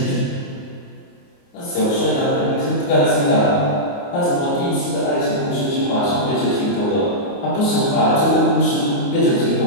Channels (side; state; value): right; late; 29 ms